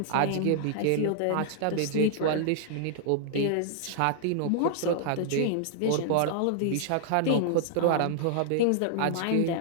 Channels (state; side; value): different; both; correlation -0.01